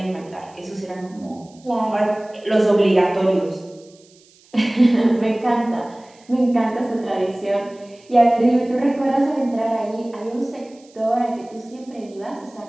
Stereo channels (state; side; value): noise; right; hiss, 29 dB below the sound